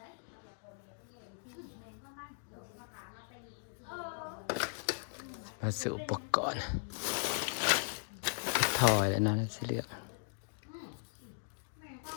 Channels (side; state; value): right; silent; digital silence